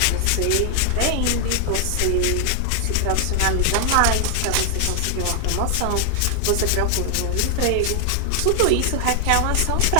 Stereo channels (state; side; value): different; both; correlation 0.00